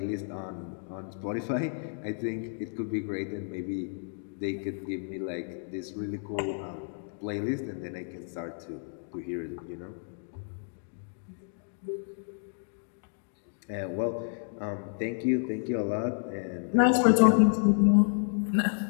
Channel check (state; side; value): silent; right; digital silence